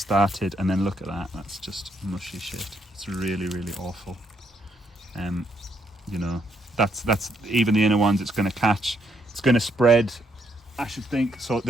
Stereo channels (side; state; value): both; normal; correlation 0.74